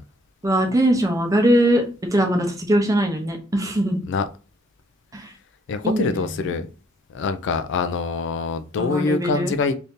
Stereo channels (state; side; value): normal; both; correlation 0.63